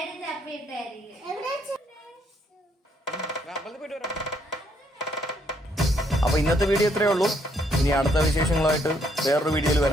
അപ്പൊ ഇന്നത്തെ വീഡിയോ ഇത്രയേ ഉള്ളൂ. ഇനി അടുത്ത വിശേഷങ്ങളുമായിട്ട് വേറൊരു വീഡിയോയിൽ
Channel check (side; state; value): both; normal; correlation 0.71